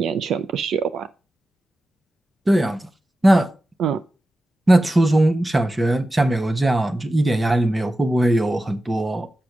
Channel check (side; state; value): both; normal; correlation 0.93